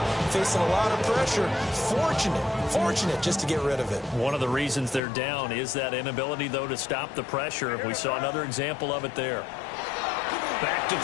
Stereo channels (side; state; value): right; drops out; at 5.0 s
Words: facing a lot of pressure. Fortunate just to get rid of it. One of the reasons they're down is that inability, though, to stop the pressure. We saw another example of it there. Back to